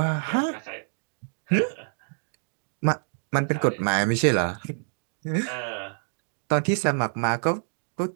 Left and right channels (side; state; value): left; silent; digital silence